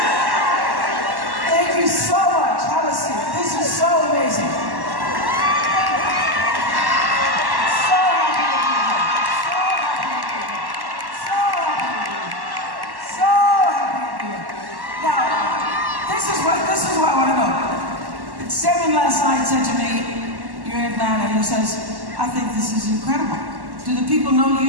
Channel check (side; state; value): left; late; 1.1 ms